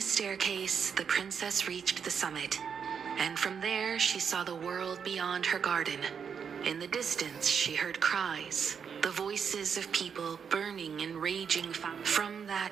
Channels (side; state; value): left; quieter; 6.9 dB